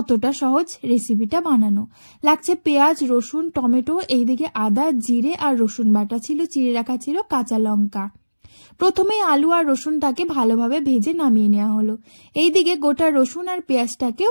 সহজ রেসিপিটা বানানো। লাগছে পেঁয়াজ, রসুন, টমেটো, এইদিকে আদা, জিরে আর রসুন বাটা ছিল, চিড়ে রাখা ছিল কাঁচা লঙ্কা। প্রথমে আলু আর রসুনটাকে ভালোভাবে ভেজে নামিয়ে নেওয়া হলো। এইদিকে গোটা রসুন আর পেঁয়াজটাকেও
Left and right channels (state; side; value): inverted; both; correlation -1.00